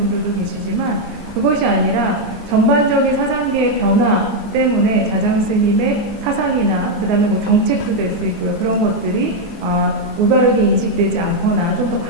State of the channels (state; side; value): normal; both; correlation 0.01